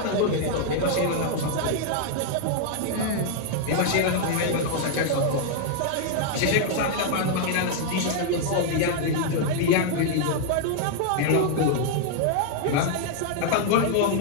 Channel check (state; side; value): different; both; correlation 0.00